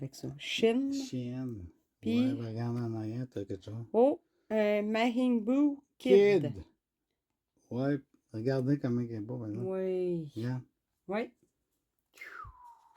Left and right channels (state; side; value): identical; both; correlation 1.00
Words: ça. Shin. Chienne. Puis- Ouais, regarde en arrière, t'as quelque chose. Oh, Majin Buu Kid. Ouais, regardez comment il est beau, par exemple. Oui. Regarde. Oui.